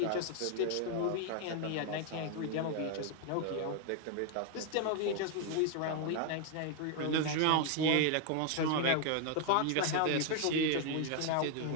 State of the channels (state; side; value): different; both; correlation 0.00